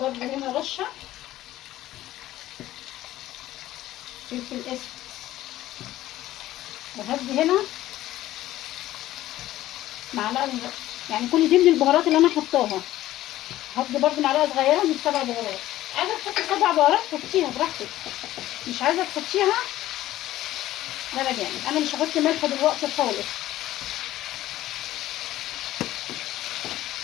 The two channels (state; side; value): quieter; right; 14.7 dB